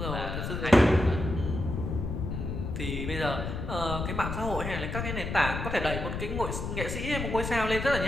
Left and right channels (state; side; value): noise; left; rumble, 4 dB below the sound